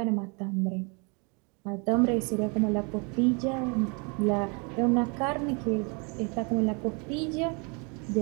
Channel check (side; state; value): left; quieter; 33.2 dB